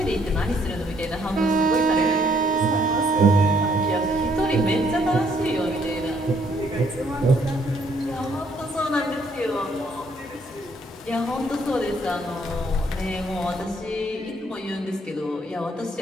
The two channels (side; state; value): both; normal; correlation 0.67